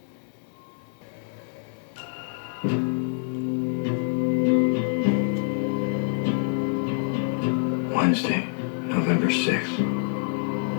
Wednesday, November 6th.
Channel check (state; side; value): silent; right; digital silence